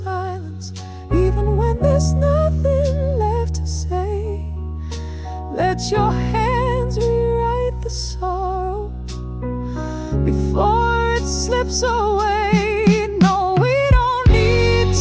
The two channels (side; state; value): both; identical; correlation 1.00